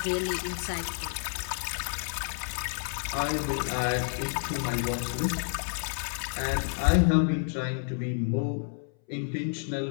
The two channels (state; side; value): silent; right; 58 dB below the other